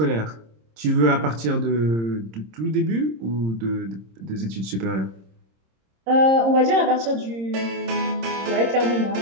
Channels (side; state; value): left; late; 26 ms